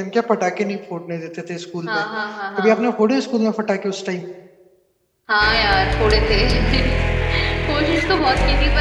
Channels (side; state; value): both; identical; correlation 1.00